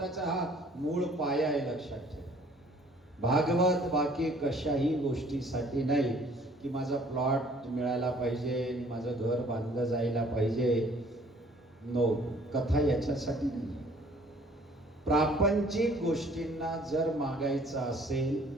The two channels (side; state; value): both; normal; correlation 0.56